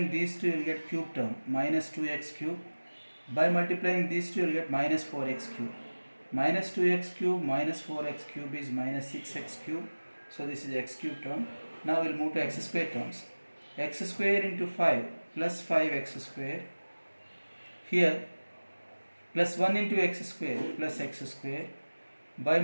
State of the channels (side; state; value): both; inverted; correlation -1.00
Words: these two, you will get cube term minus 2x cube. By multiplying these two, you will get minus 4x cube. Minus 2x cube minus 4x cube is minus 6x cube. So this is x cube term. Now we will move to x square terms. X square into 5 plus 5x square. Here plus 1 into x square plus x square. By